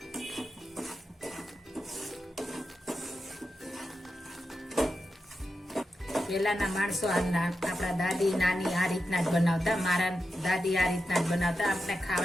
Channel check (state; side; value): normal; both; correlation 0.89